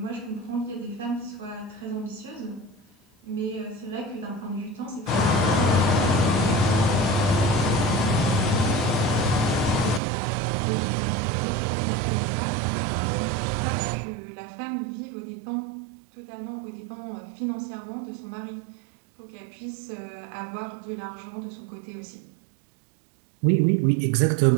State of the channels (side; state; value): left; drops out; at 10.0 s